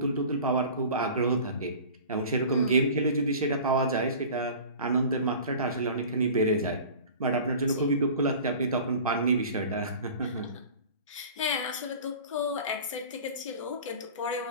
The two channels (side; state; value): both; inverted; correlation -0.40